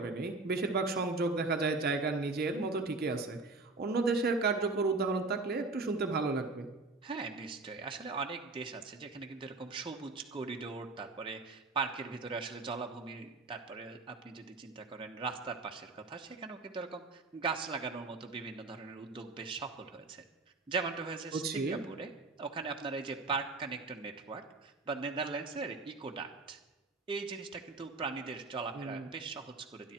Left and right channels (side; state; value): left; quieter; 3.6 dB